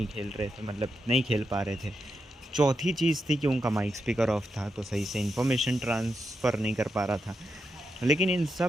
खेल रहे थे, मतलब नहीं खेल पा रहे थे। चौथी चीज़ थी कि उनका माइक स्पीकर ऑफ था तो सही से इन्फॉर्मेशन ट्रांसफ़र नहीं कर पा रहा था। लेकिन इन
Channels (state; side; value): normal; both; correlation 0.85